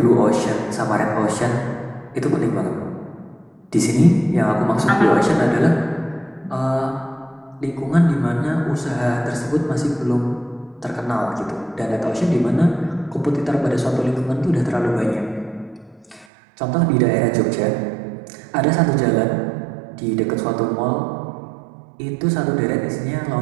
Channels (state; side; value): drops out; left; at 16.2 s